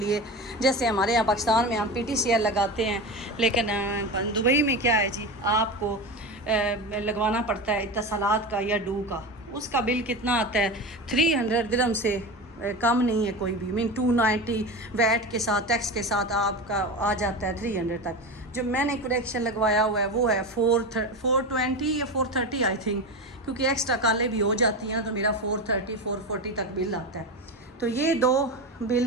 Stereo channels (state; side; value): normal; both; correlation 0.24